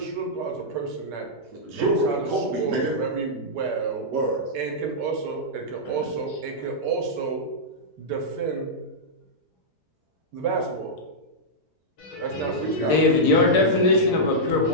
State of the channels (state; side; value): normal; both; correlation -0.10